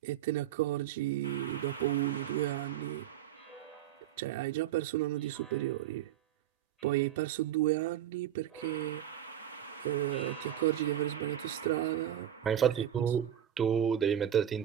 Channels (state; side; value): quieter; left; 10.8 dB